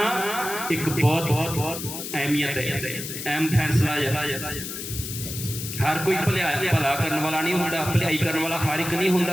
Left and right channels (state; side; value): noise; left; hiss, 7 dB below the sound